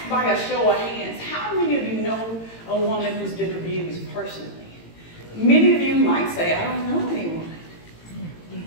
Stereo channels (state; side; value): late; right; 18 ms